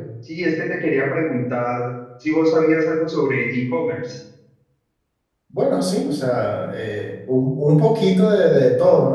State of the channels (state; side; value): identical; both; correlation 1.00